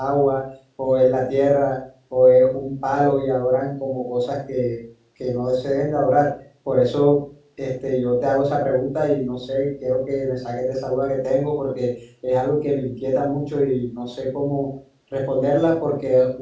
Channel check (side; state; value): both; identical; correlation 1.00